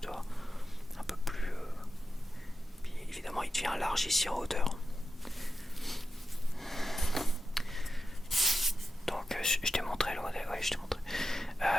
tu vois. Un peu plus... Puis évidemment il devient large ici en hauteur. Donc je t'ai montré le modèle, oui je t'ai montré.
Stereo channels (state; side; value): normal; both; correlation 0.90